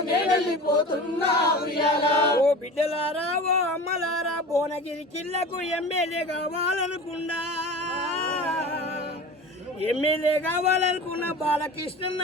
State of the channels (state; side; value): normal; both; correlation 0.35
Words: నేనెళ్ళిపోతున్నా ఉయ్యాలో ఓ బిడ్డలారా ఓ అమ్మలారా భువనగిరి జిల్లాకు ఎమ్మెల్యే కావాలనుకున్నా ఎమ్మెల్యే కావాలనుకున్న బాలకృష్ణ